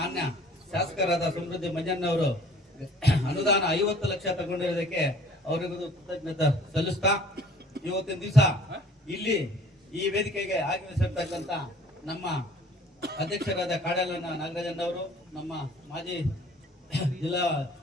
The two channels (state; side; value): normal; both; correlation 0.52